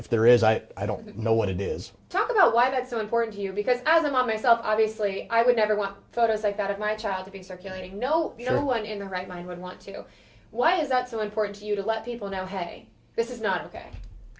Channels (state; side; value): identical; both; correlation 1.00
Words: there is, I don't know what it is. Talk about why that's so important to you, because as a mom myself, obviously, I would never want photos like that of my child to be circulating. No one in their right mind would want to. Why is that so important to you to let people know, hey, this is not okay?